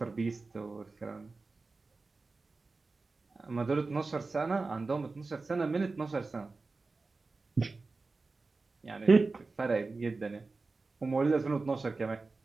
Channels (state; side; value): quieter; left; 3.8 dB